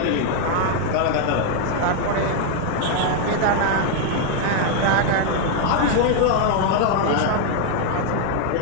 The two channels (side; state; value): both; different; correlation 0.00